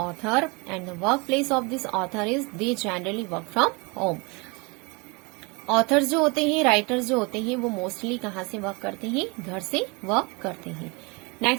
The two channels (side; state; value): left; quieter; 28.7 dB